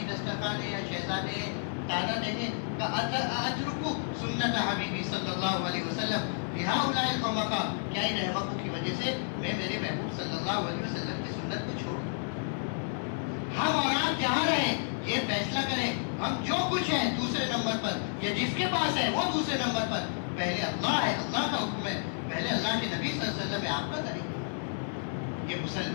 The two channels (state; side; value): silent; right; 57 dB below the other